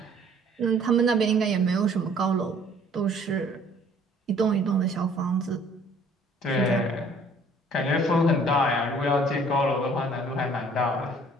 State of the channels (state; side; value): normal; both; correlation 0.56